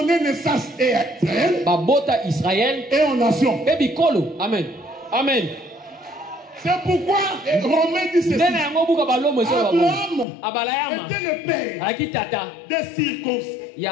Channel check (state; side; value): drops out; right; at 10.2 s